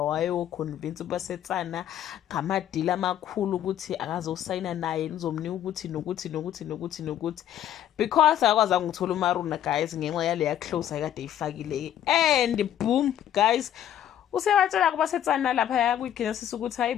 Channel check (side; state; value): right; quieter; 10.9 dB